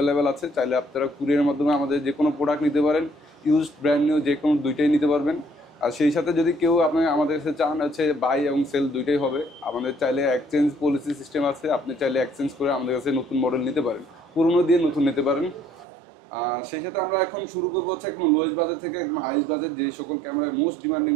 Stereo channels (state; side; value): drops out; left; at 15.9 s